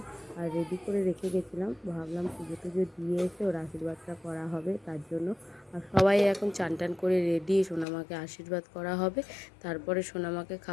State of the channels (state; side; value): drops out; right; at 7.9 s